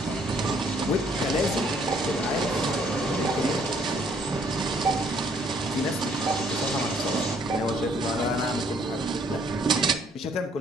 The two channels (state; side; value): normal; both; correlation 0.64